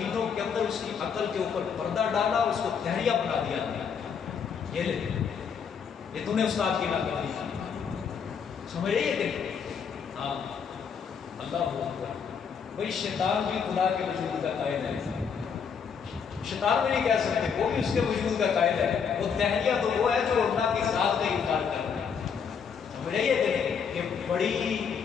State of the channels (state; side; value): quieter; right; 6.7 dB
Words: کے اندر اس کی عقل کے اوپر پردہ ڈالا، اس کو دہریہ بنا دیا. یہ لے یہ تم نے استاد کی ناکامی کی. سمجھ رہی ہے کہ ہاں اللہ اکبر. بھائی شیطان بھی خدا کے وجود کا قائل ہے. شیطان بھی نہیں کہہ سکتے، وہ بھی اس کے وجود کا قائل ہے. وہ دہریہ تو وہ ہے جو اللہ کی ذات کا انکار کر رہا ہے. سمجھ رہی ہے کہ بڑی